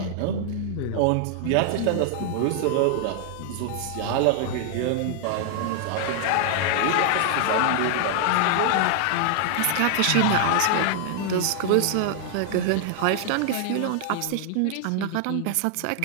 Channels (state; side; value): different; both; correlation 0.00